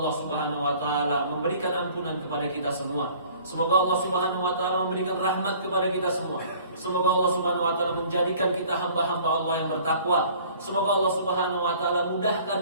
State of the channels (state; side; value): inverted; both; correlation -0.52